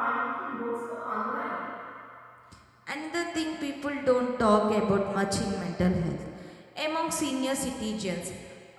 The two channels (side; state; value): both; identical; correlation 1.00